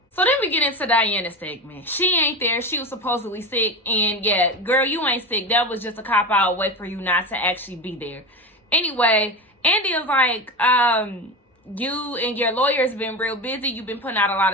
So then we get into Diana's segment. She ain't there. She was supposedly sick. And yeah, girl, you ain't sick. That was just a cop-out way for you not to actually be there. Anyway, Andy is like, you and your lawyer's been real busy. You've been putting out a lot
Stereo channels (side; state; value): both; normal; correlation 0.23